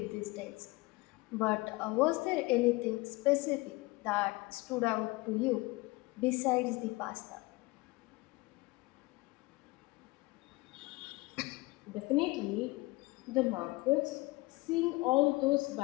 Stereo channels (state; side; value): quieter; right; 22.8 dB